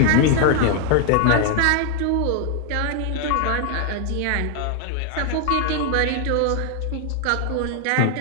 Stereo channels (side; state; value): both; different; correlation 0.00